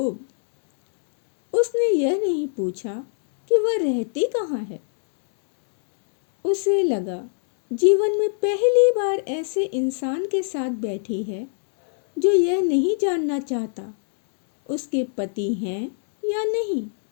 उसने यह नहीं पूछा कि वह रहती कहाँ है। उसे लगा जीवन में पहली बार ऐसे इंसान के साथ बैठी है जो यह नहीं जानना चाहता उसके पति हैं या नहीं,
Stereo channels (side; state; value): right; silent; digital silence